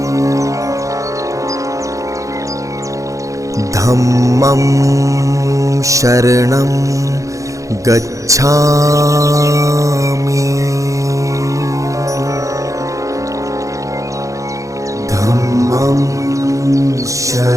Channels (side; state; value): left; late; 0.16 ms